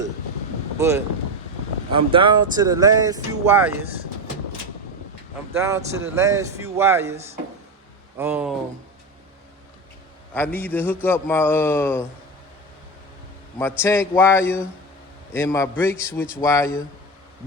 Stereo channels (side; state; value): both; normal; correlation 0.17